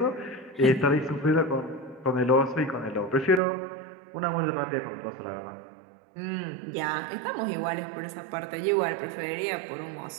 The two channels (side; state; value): left; drops out; at 3.4 s